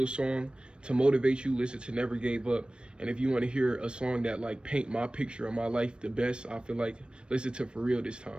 song to motivate you, listen to Never Gave Up. And if you want to hear a song that like paint my picture of my life the best, I feel like, listen to For Real This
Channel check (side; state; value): left; late; 0.055 ms